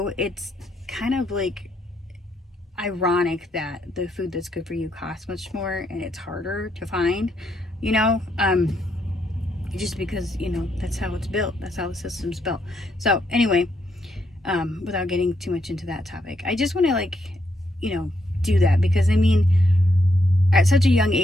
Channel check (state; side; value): normal; both; correlation 0.77